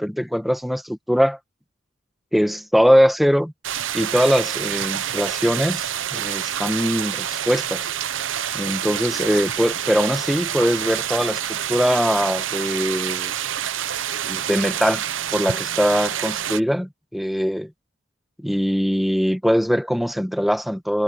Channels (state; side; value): normal; both; correlation 0.84